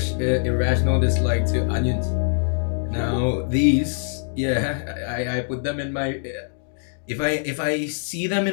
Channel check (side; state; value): right; silent; digital silence